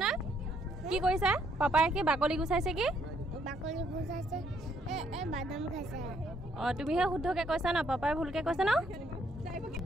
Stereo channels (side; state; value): both; normal; correlation 0.70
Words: কি কৈছা? পাপাই কি বাকলি গুচাইছে? কি বাকলি গুচাইছে? বাদাম খাইছে। তুমিহে শুদ্ধকে কৈছা ন, পাপাই ভুলকে কৈছে ন?